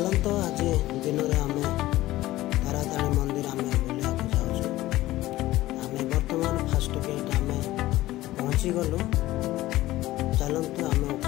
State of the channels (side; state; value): right; quieter; 16.5 dB